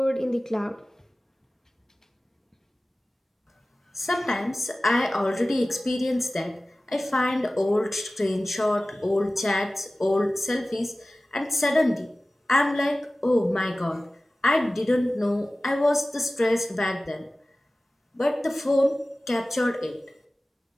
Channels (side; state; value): both; normal; correlation 0.97